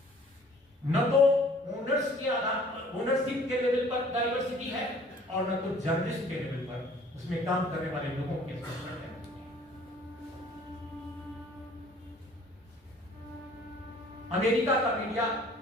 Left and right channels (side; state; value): both; normal; correlation 0.54